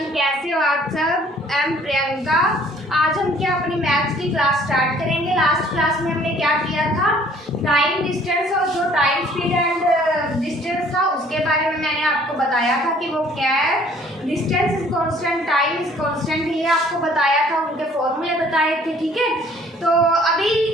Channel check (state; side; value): normal; both; correlation 0.57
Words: Everyone, कैसे हो आप सब। I am Priyanka. आज हम क्या अपनी मैथ्स की क्लास स्टार्ट करेंगे। लास्ट क्लास में हमने क्या किया था, टाइम डिस्टेंस और जो टाइम स्पीड एंड डिस्टेंस था उसके बारे में मैंने आपको बताया था कि वो क्या है। Distance is constant, time is constant, ये आपको बताया था, उनके फॉर्मूले बताए थे। ठीक है, तो अभी